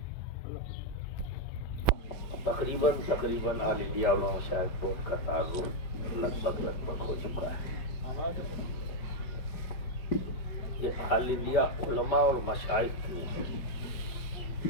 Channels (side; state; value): right; late; 5.4 ms